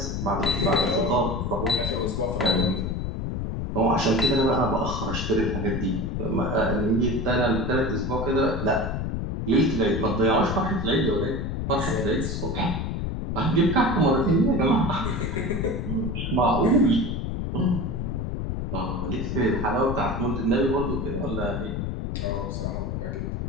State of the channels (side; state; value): left; noise; rumble, 2 dB below the sound